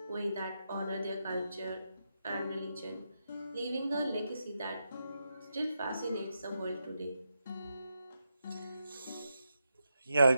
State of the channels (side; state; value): both; inverted; correlation -0.84